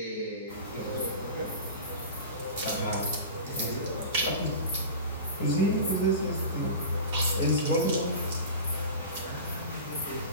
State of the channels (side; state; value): both; inverted; correlation -0.32